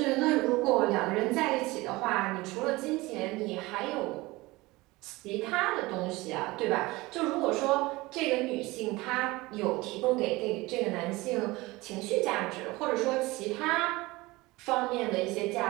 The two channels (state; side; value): quieter; left; 21.2 dB